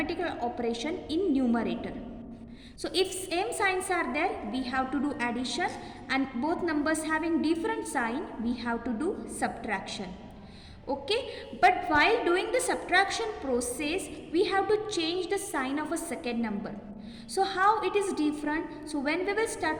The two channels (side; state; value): both; identical; correlation 1.00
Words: operation in numerator. So if same signs are there we have to do addition, and both numbers having different sign we have to do subtraction. Okay, but while doing the subtraction process we have to change the sign of a second number. So how it is different? So when we will